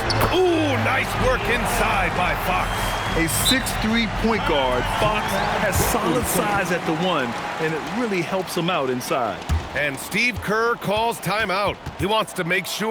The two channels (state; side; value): identical; both; correlation 1.00